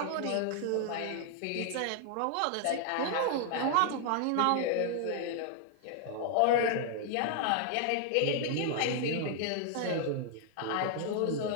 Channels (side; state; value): both; different; correlation 0.00